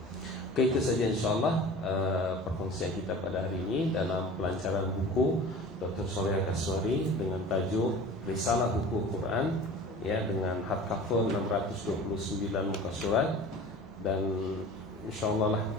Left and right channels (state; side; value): normal; both; correlation 0.40